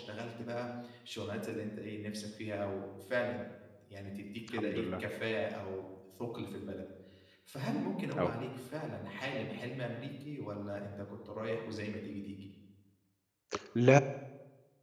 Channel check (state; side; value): identical; both; correlation 1.00